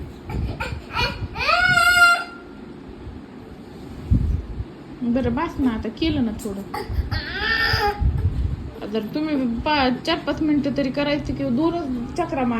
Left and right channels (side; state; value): both; identical; correlation 1.00